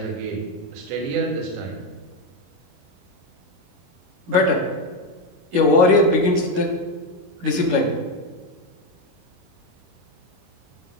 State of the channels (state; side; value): late; left; 22 ms